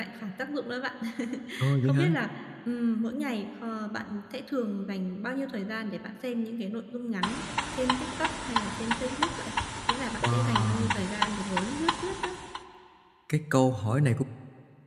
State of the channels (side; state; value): both; identical; correlation 1.00